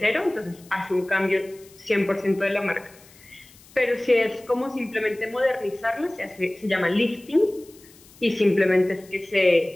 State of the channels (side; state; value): left; noise; hiss, 25 dB below the sound